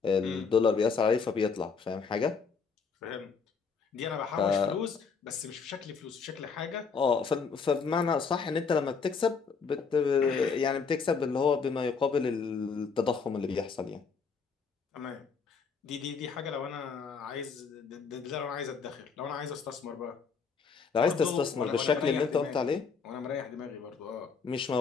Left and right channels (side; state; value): right; quieter; 5.4 dB